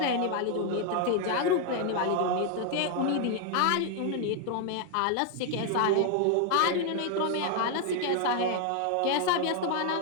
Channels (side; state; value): both; different; correlation 0.00